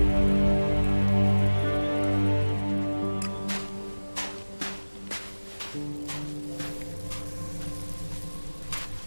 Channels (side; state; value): both; inverted; correlation -1.00